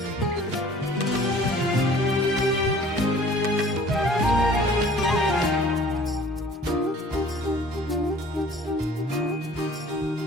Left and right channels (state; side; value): normal; both; correlation 0.50